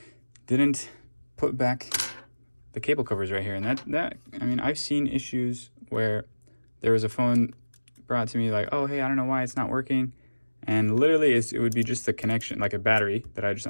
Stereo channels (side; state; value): both; inverted; correlation -1.00